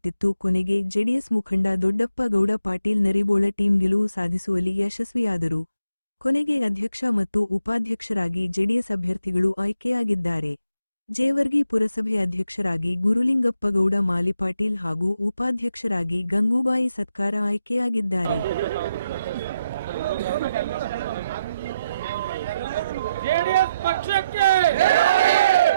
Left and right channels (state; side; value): inverted; both; correlation -0.81